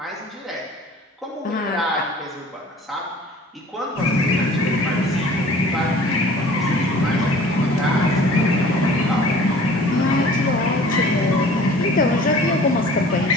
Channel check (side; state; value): both; normal; correlation 0.48